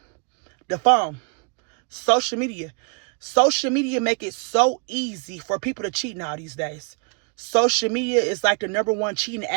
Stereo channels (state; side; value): quieter; left; 36.9 dB